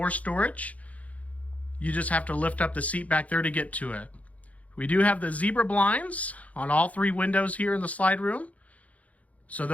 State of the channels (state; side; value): late; right; 0.069 ms